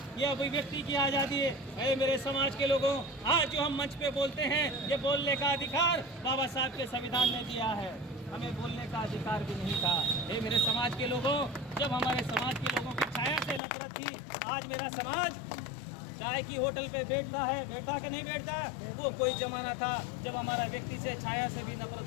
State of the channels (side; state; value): right; drops out; at 13.6 s